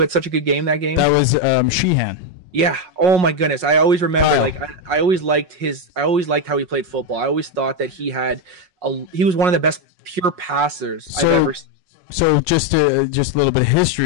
had such a good game that game? That was Sheehan. Yeah. Oh my goodness. I always remember, I always liked how he played football. I always thought that he was one of the best pure passers I've ever seen. So just a little bit of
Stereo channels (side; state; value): left; late; 5.5 ms